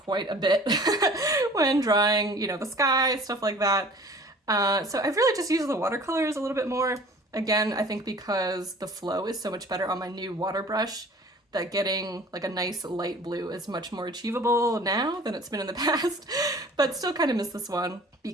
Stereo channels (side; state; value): both; normal; correlation 0.47